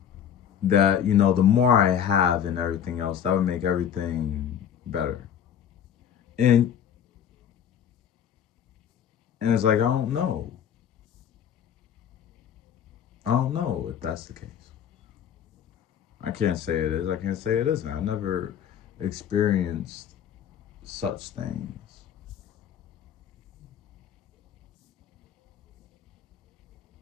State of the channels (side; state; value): right; quieter; 9.0 dB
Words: that, you know, the more I have and everything else, that would make everything better. And it's like, I don't know. I don't know if that's the case. I can't say it is. I can't say it isn't. I never experienced such things.